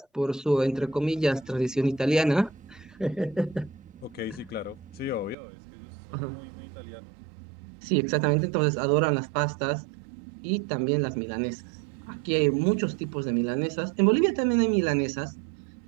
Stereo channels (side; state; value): left; drops out; at 5.4 s